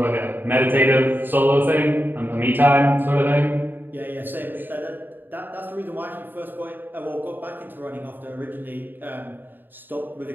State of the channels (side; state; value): left; late; 0.092 ms